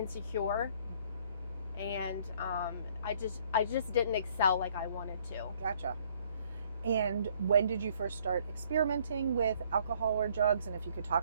and I just didn't excel like I wanted to. Gotcha. And when did you first start experimenting with alcohol or drugs? And if you could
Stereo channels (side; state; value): both; inverted; correlation -0.62